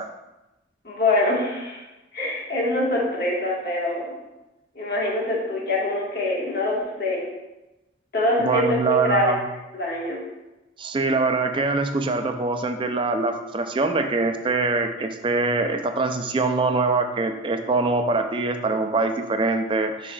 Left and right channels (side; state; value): both; normal; correlation 0.22